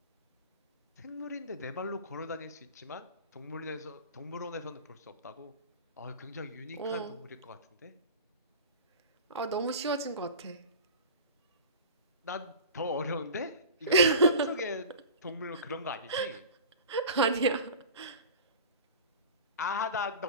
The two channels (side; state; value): both; inverted; correlation -0.36